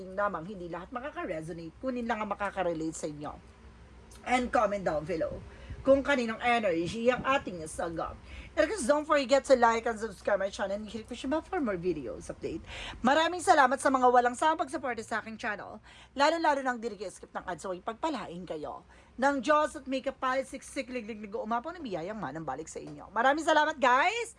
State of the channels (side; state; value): both; identical; correlation 1.00